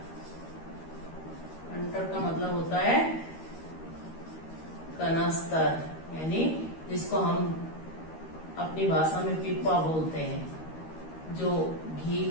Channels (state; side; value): late; right; 13 ms